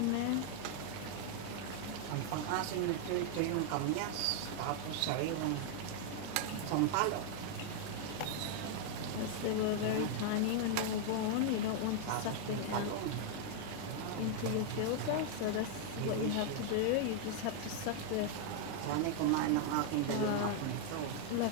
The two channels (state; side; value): different; both; correlation 0.00